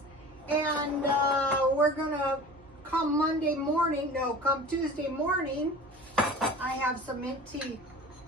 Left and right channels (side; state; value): both; normal; correlation 0.39